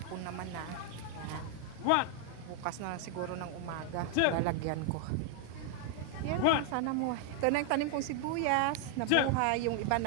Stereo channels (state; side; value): different; both; correlation 0.00